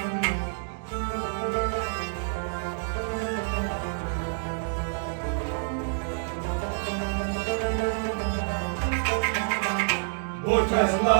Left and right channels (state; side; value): silent; left; digital silence